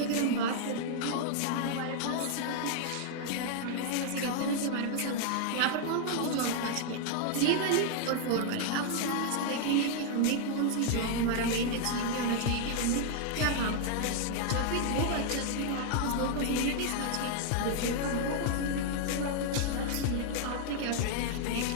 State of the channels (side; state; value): both; different; correlation 0.00